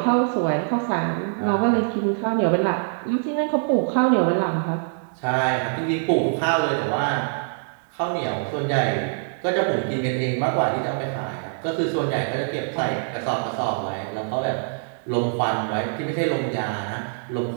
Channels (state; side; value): silent; left; digital silence